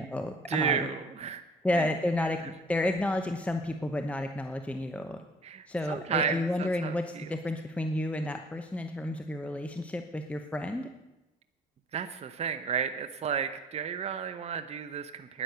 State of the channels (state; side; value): normal; both; correlation 0.51